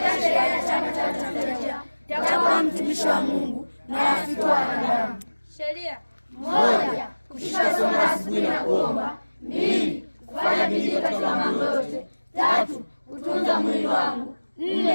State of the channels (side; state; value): both; inverted; correlation -1.00